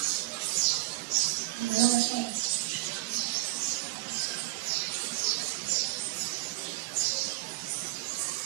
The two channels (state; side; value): quieter; left; 21.1 dB